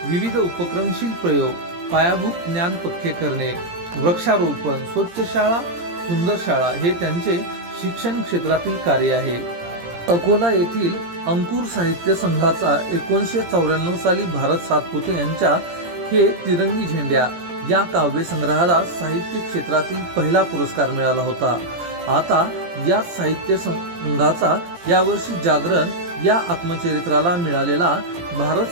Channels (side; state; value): left; late; 17 ms